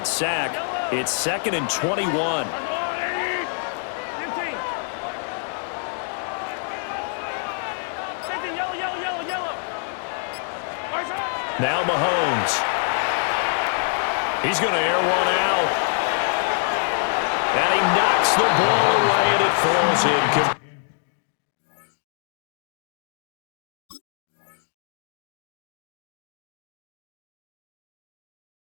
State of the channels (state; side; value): silent; right; 58 dB below the other